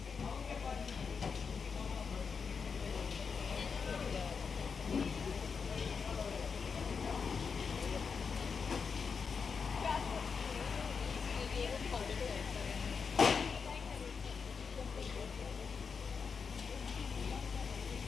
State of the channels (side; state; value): right; quieter; 5.7 dB